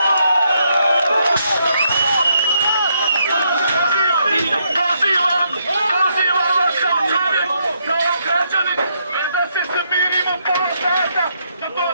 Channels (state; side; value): inverted; both; correlation -0.76